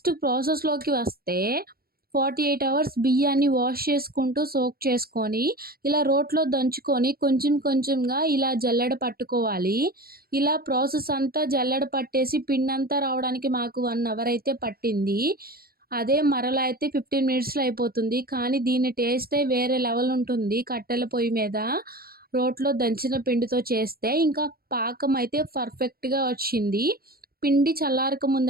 ప్రాసెస్‌లోకి వస్తే 48 అవర్స్ బియ్యాన్ని వాష్ చేసుకుంటూ సోక్ చేసుకొని, ఇలా రోట్లో దంచుకొని కొంచెం కొంచెంగా ఇలా జల్లెడ పట్టుకోవాలి. ఇలా ప్రాసెస్ అంతా జల్లెడ పట్టేసి పిండంతా రావడానికి మాకు 1 అవర్ అయితే పట్టింది. అదే మరలా అయితే 15 మినిట్స్‌లో అయిపోతుంది. కానీ దీని టేస్టే వేరే లెవెల్ ఉంటుంది. కట్టెల పొయ్యి మీద రోట్లో దంచిన పిండితో చేస్తే ఇంకా పాకం అయితే పర్ఫెక్ట్‌గా వచ్చింది. పిండి చల్లారక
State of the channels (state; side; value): late; left; 0.44 ms